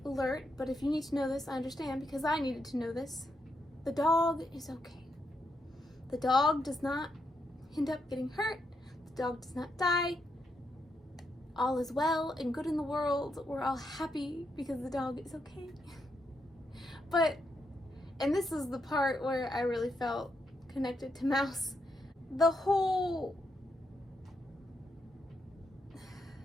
alert, but if you need to know this, I understand, because I needed to know this. The dog is okay. The dog does not end up getting hurt. The dog does not die. All is well and good in the world. We're all happy because the dog is okay. But, and this is the part where I really felt connected to Mouse. The whole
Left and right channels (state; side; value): normal; both; correlation 0.81